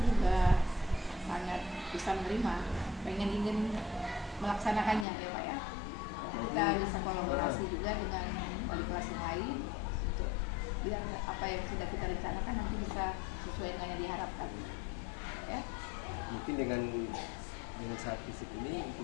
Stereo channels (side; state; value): right; drops out; at 5.1 s